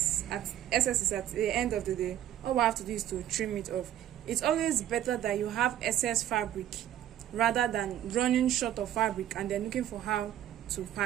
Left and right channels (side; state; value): left; quieter; 11.7 dB